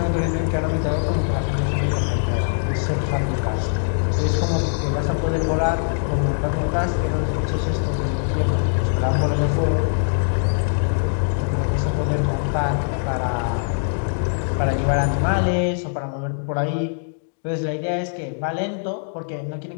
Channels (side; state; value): right; silent; digital silence